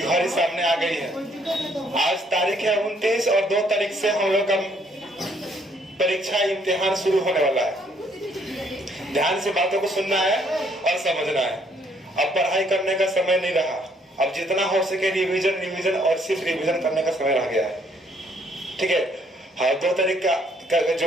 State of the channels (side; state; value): both; normal; correlation 0.66